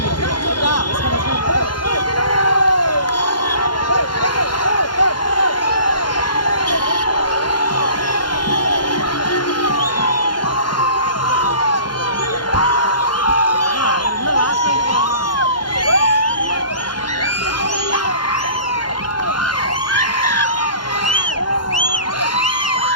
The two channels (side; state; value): right; late; 0.71 ms